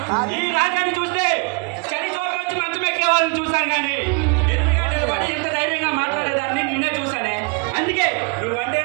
ఈ రాజాన్ని చూస్తే చలి చోట వచ్చి మంచం ఎక్కే వాళ్ళని చూసాను కానీ ఎదురుగా నిలబడి ఎంత ధైర్యంగా మాట్లాడేదాన్ని నిన్నే చూసానే. అందుకే నువ్వంటే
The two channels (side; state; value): left; quieter; 30.9 dB